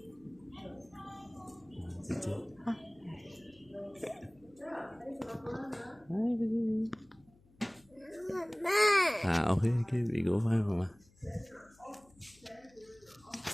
chị ok cái bị gỗ phải không mà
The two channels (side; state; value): left; noise; hum, 29 dB below the sound